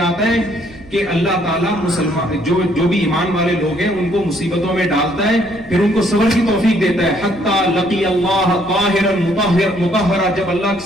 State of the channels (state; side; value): noise; right; rumble, 22 dB below the sound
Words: ہے کہ اللہ تعالیٰ مسلمان جو بھی ایمان والے لوگ ہیں ان کو مصیبتوں میں ڈالتا ہے, پھر ان کو صبر کی توفیق دیتا ہے. حتی لقی اللہ طاہرا مطہرا, جب اللہ